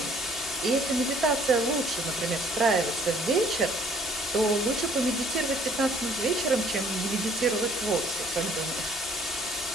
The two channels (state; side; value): normal; both; correlation 0.59